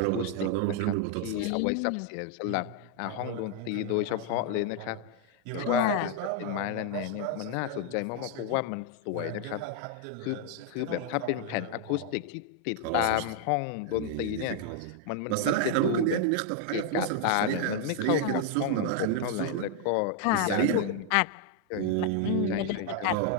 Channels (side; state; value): both; different; correlation 0.00